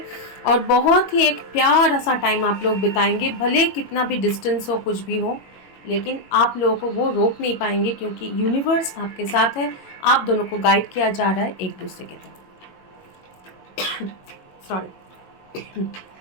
और बहुत ही एक प्यारा सा टाइम आप लोग बिताएंगे, भले कितना भी डिस्टेंस हो, कुछ भी हो, लेकिन आप लोगों को वो रोक नहीं पाएंगे क्योंकि यूनिवर्स आपके साथ है, आप दोनों को गाइड किया जा रहा है एक दूसरे के तरफ। सॉरी।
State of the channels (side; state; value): right; late; 22 ms